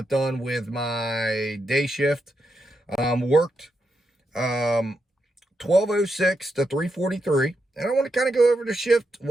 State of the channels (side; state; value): both; normal; correlation 0.83